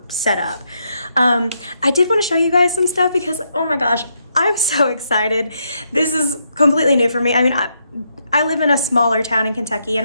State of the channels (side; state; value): both; inverted; correlation -0.78